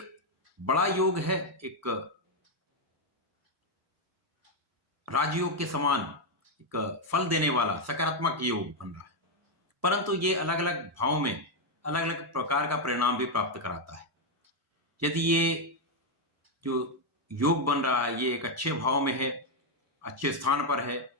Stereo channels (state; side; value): normal; both; correlation 0.02